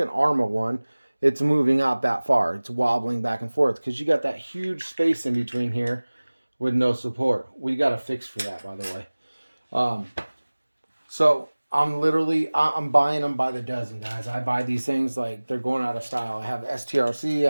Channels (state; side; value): inverted; both; correlation -1.00